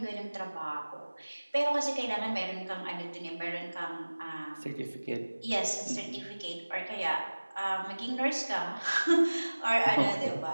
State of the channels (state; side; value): inverted; both; correlation -1.00